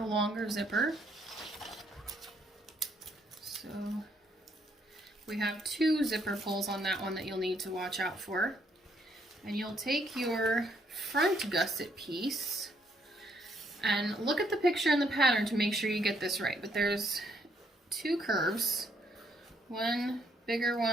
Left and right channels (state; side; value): normal; both; correlation 0.71